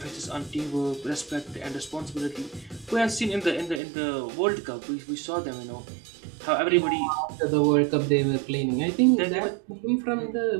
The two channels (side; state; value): left; drops out; at 3.8 s